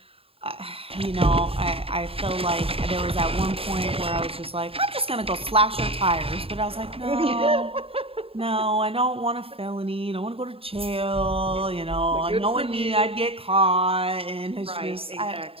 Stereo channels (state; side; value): late; left; 0.27 ms